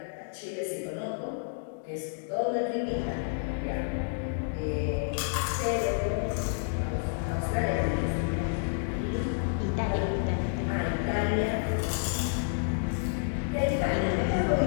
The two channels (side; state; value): right; silent; digital silence